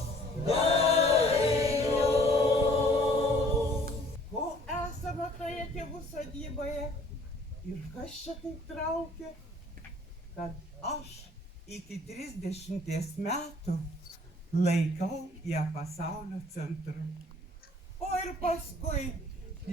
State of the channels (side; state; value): both; normal; correlation 0.56